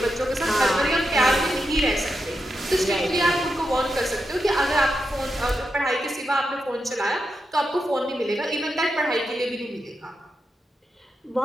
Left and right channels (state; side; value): normal; both; correlation 0.86